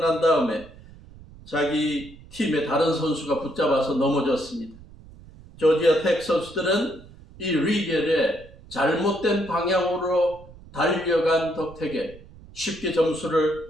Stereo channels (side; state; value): right; noise; rumble, 20 dB below the sound